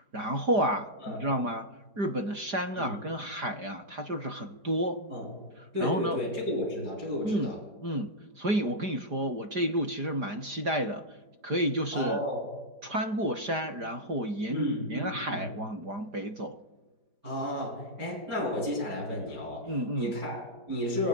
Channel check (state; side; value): late; left; 4.9 ms